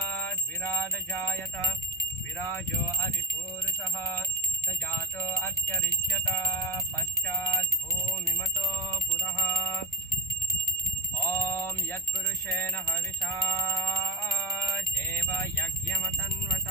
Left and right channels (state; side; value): normal; both; correlation 0.29